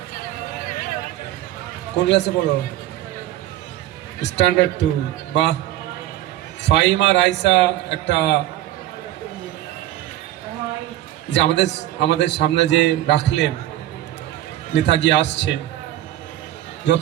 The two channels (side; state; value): left; quieter; 14.2 dB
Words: কোন ক্লাসে পড়ো? স্ট্যান্ডার্ড 2। বাহ, ফাইমা রাইসা একটা যে আমাদের সামনে যে রাখলেন, নেতাজি আসছে,